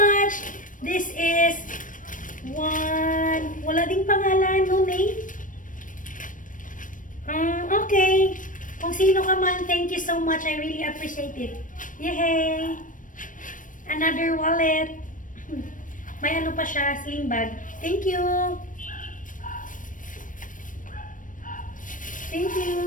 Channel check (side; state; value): right; late; 0.38 ms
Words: This is one. Wala ding pangalan, no name? Okay. Kung sino ka man, thank you so much. I really appreciate it. Yay! Another wallet. May ano pa siya, sling bag. Thank you. Thank